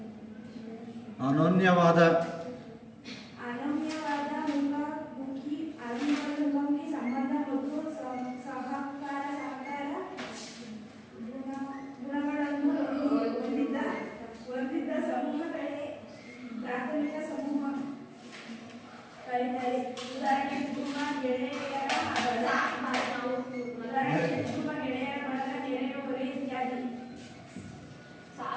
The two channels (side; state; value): both; identical; correlation 1.00